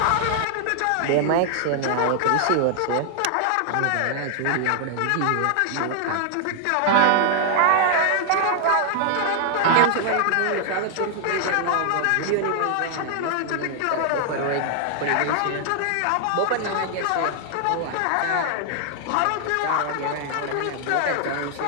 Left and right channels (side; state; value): both; different; correlation -0.01